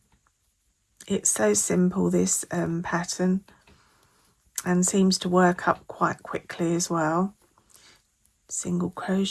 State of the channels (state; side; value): identical; both; correlation 1.00